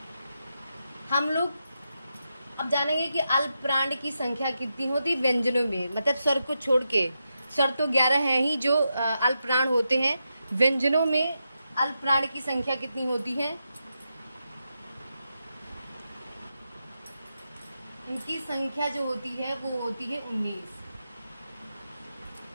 हम लोग अब जानेंगे कि अल्प प्राण की संख्या कितनी होती है व्यंजनों में। मतलब स्वर को छोड़ के, स्वर तो 11 हैं ही जो अल्प प्राण होते हैं। व्यंजनों में अल्प प्राण की संख्या कितनी होती है? इनकी संख्या जो होती है वो होती है 19।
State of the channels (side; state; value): both; inverted; correlation -0.86